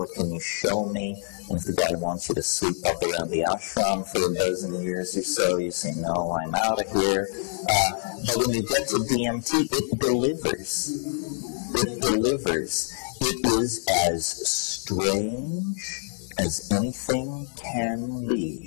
you show me? And if the guy wants you to sweep up around the ashram for a dozen years or so, you say, no, I'm out of here. But when you get to DMT, it delivers. It delivers. It is as strange as anything can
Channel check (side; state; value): right; silent; 59 dB below the other